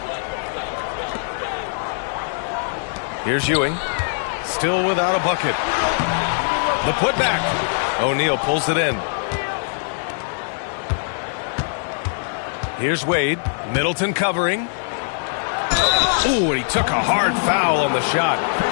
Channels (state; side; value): silent; right; digital silence